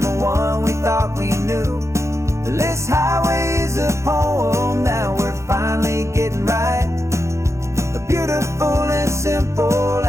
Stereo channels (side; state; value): left; late; 0.14 ms